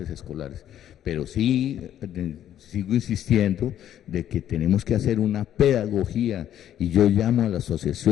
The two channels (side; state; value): right; quieter; 11.0 dB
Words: escolares, pero sí sigo insistiendo de que tenemos que hacer una pedagogía y yo llamo a las